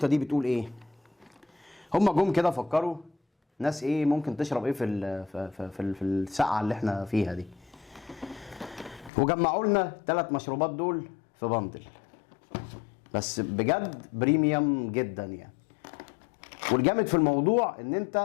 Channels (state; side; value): drops out; right; at 9.1 s